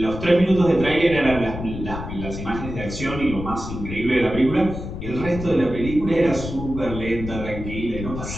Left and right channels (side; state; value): left; noise; rumble, 8 dB below the sound